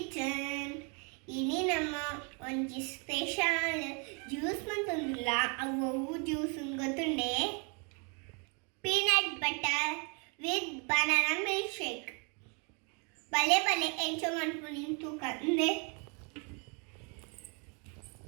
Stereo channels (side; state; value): left; quieter; 35.2 dB